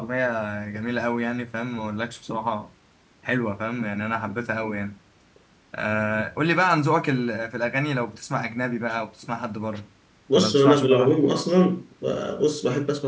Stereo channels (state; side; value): identical; both; correlation 1.00